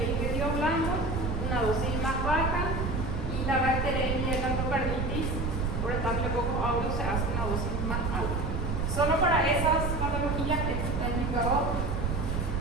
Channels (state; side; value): noise; right; rumble, 1 dB below the sound